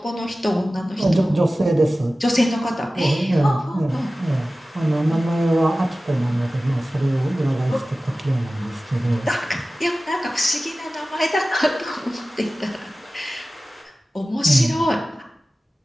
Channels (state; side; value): normal; both; correlation 0.96